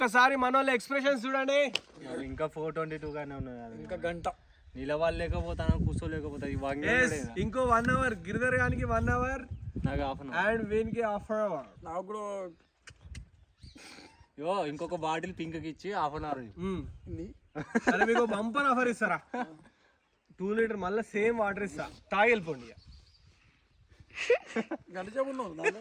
మన వాళ్ళ ఎక్స్ప్రెషన్స్ చూడండి. ఇంకా 4:22 గానే ఉన్నది. ఇంకా గంట నిలవలేకపోతాను, కూర్చోలేకపోతా. ఇంకో 1 అవర్. గిరిధర్ గానికి 1 అవర్, నాకు హాఫ్ అన్ అవర్, అండ్ వీనికి హాఫ్ అవర్. నాకు కూడా ఇంకొక బాటిల్ పింక్ కి ఇచ్చి హాఫ్ అన్ అవర్. అరే మీకు బంపర్ ఆఫర్ ఇస్తారా? 2 లీటర్ మళ్ళీ సేమ్ వాటర్ ఇస్తా, తాగి వెళ్ళిపోండి.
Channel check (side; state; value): both; identical; correlation 1.00